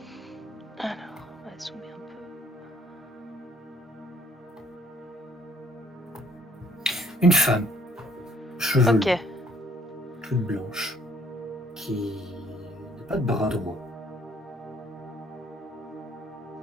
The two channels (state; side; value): normal; both; correlation 0.64